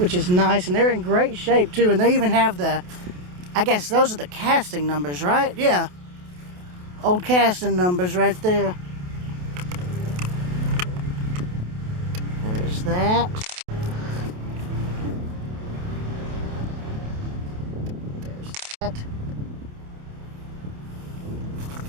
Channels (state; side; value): late; left; 28 ms